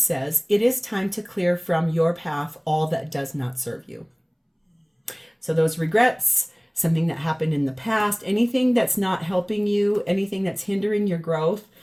it is time to clear from your path all that does not serve you. So those regrets, something that happened in the past, anything that's not helping you, anything that's hindering your growth,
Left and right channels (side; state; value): both; identical; correlation 1.00